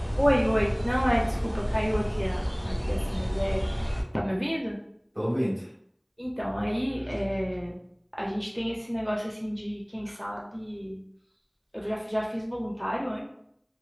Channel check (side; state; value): both; identical; correlation 1.00